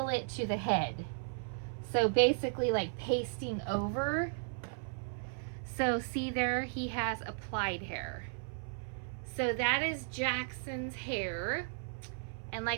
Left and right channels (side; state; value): left; silent; 54 dB below the other